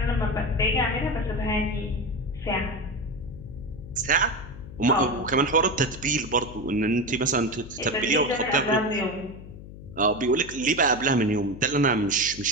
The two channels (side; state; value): left; noise; hum, 15 dB below the sound